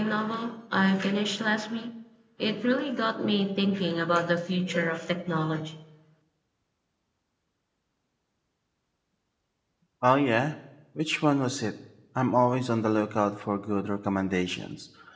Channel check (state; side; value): identical; both; correlation 1.00